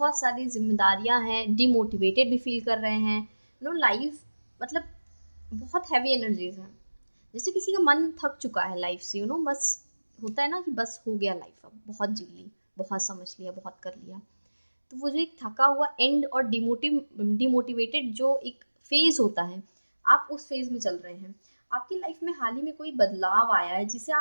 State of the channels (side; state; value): both; inverted; correlation -1.00